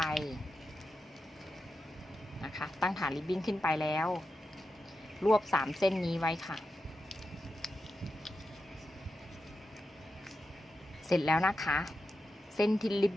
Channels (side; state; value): both; normal; correlation 0.89